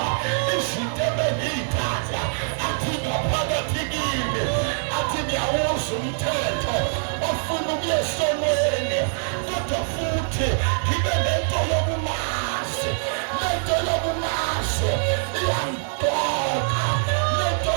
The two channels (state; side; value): silent; left; digital silence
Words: izinto ebengiyithanda athi ngaphakathi kimi athi ngiyawuza umthetho ofuna ukuya esonweni kodwa futhi ngibe lento yokumazi iyangidoka lento